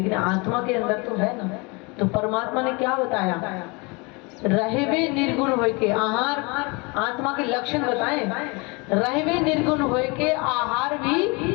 आत्मा के अंदर तो है ना। तो परमात्मा ने क्या बताया? रहवे निर्गुण होय के आहार, आत्मा के लक्षण बताए। रहवे निर्गुण होय के आहार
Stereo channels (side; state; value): right; quieter; 28.6 dB